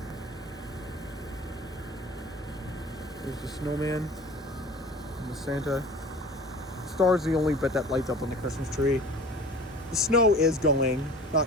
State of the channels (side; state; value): both; normal; correlation 0.42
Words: There's the snowman and the Santa. Star's the only bit that lights up on the Christmas tree. the snow is going.